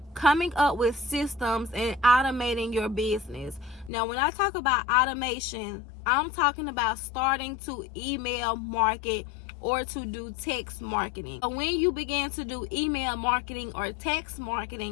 coming up with systems and automating your business. Now, when I talk about automation, I'm talking about starting to email market or to do text marketing. So when you begin to do email marketing or text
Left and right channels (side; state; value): right; drops out; at 3.9 s